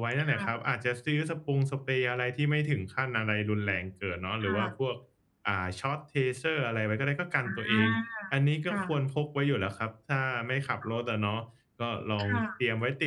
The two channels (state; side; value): identical; both; correlation 1.00